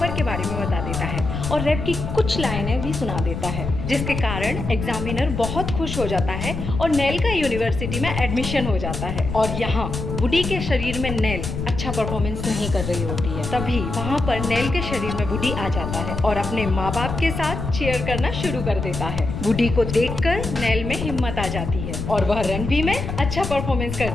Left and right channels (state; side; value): noise; left; rumble, 5 dB below the sound